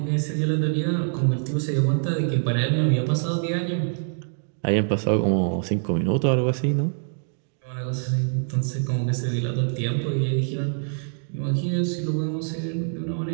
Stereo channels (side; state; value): left; silent; digital silence